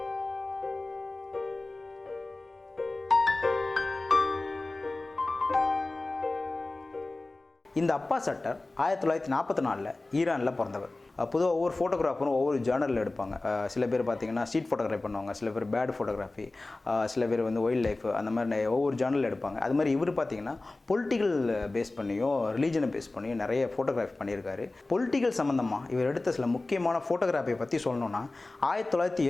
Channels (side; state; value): right; quieter; 3.1 dB